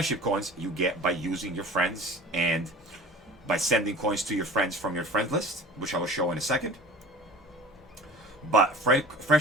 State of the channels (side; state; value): both; normal; correlation 0.40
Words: coins you get by using your friends and by sending coins to your friends from your friend list, which I will show in a second. But